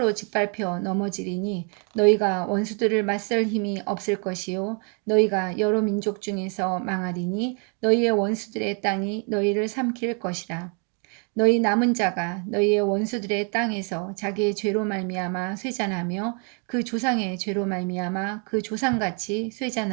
짓밟혀 넘어지리니 너희가 원수들을 맞설 힘이 없을 것이요 너희가 여러 민족 중에서 망하리니 너희의 원수들의 땅이 너희를 삼킬 것이라. 너희 남은 자가 너희의 원수들의 땅에서 자기의 죄로 말미암아 쇠잔하며 그 조상의 죄로 말미암아 그 조상같이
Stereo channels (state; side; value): quieter; left; 35.9 dB